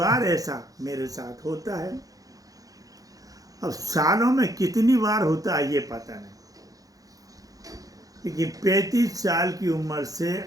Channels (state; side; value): late; left; 0.17 ms